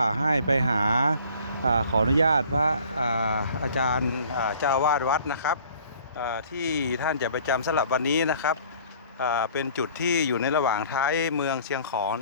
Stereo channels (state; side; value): inverted; both; correlation -0.52